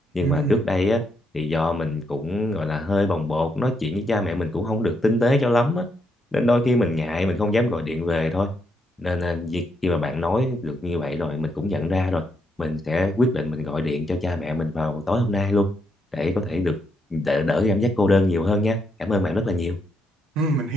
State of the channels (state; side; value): normal; both; correlation 0.78